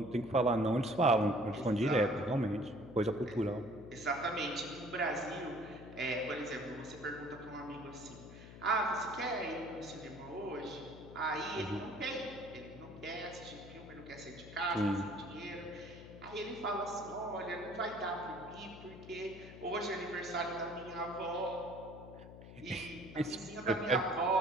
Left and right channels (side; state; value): left; noise; hum, 15 dB below the sound